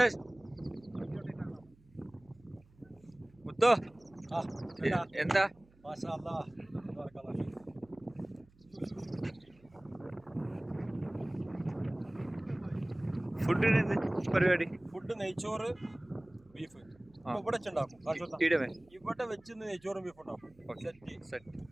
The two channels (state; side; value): noise; right; hum, 28 dB below the sound